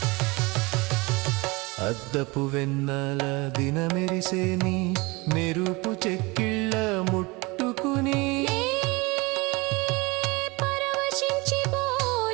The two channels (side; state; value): left; quieter; 24.8 dB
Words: అద్దపు వెన్నెల దినమెరిసేని మెరుపు చెక్కిళ్ళ ముట్టుకుని పరవశించి